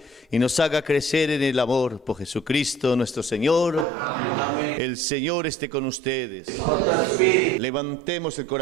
y nos haga crecer en el amor por Jesucristo nuestro Señor. Amén. El Señor esté con ustedes. Levantemos el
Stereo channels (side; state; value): left; drops out; at 3.9 s